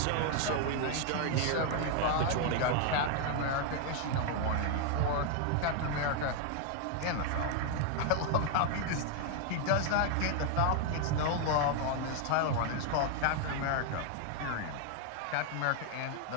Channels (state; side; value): different; both; correlation 0.01